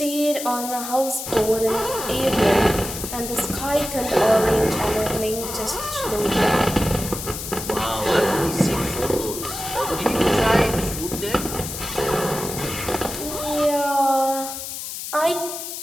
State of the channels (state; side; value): noise; left; hiss, 7 dB below the sound